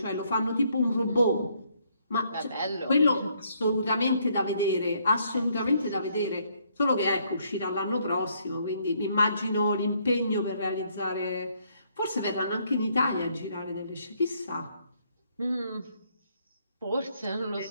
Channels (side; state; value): both; inverted; correlation -0.69